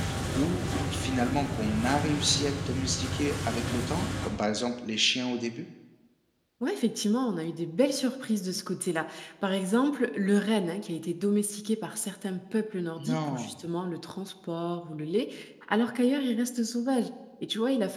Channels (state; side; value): identical; both; correlation 1.00